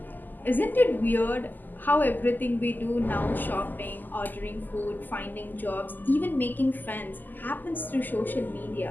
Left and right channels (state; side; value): late; right; 0.087 ms